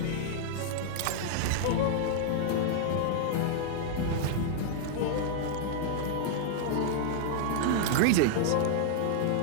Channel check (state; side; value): different; both; correlation -0.01